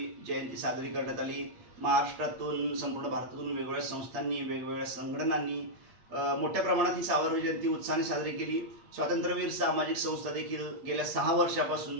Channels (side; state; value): left; late; 8.5 ms